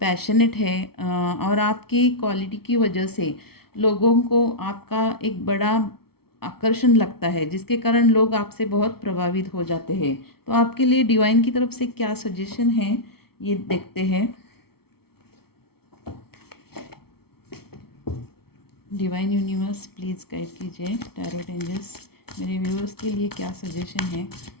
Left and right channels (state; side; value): late; right; 0.95 ms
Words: है, और आपकी क्वालिटी की वजह से लोगों को आपका एक बड़ा आकर्षण लगता है, जिसके कारण लोग आपसे बहुत प्रभावित हो जाते हैं। तो आपके लिए डिवाइन की तरफ से क्या सजेशन है, ये देखते हैं। डिवाइन यूनिवर्स प्लीज़ गाइड कीजिए, टैरोट एंजल्स मेरे व्यूअर्स के लिए क्या सजेशन है।